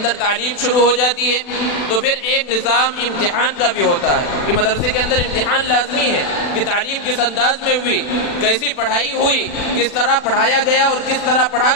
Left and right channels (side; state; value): right; late; 40 ms